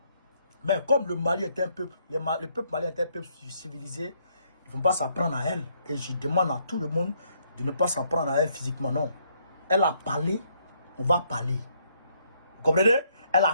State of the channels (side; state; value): both; inverted; correlation -0.71